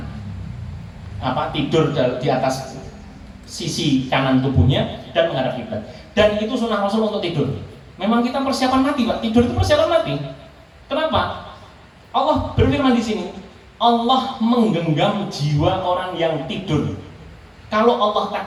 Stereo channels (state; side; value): identical; both; correlation 1.00